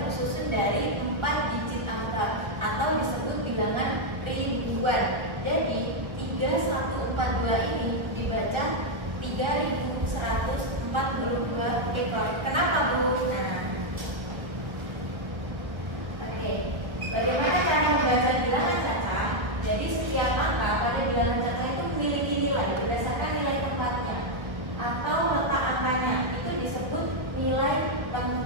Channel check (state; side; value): late; left; 1.1 ms